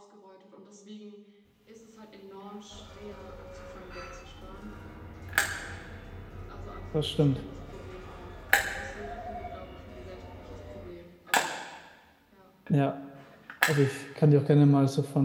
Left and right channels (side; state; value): both; identical; correlation 1.00